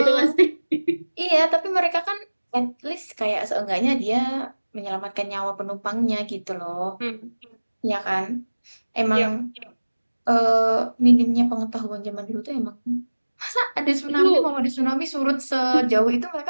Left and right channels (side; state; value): both; inverted; correlation -1.00